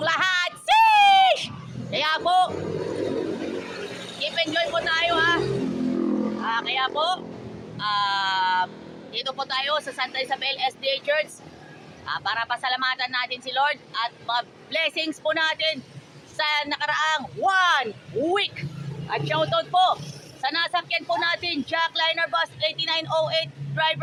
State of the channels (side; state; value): both; identical; correlation 1.00